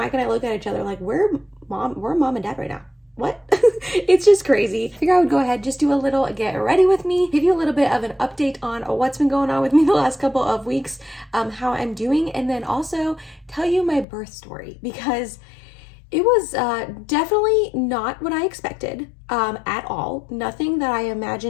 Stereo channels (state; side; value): drops out; right; at 14.1 s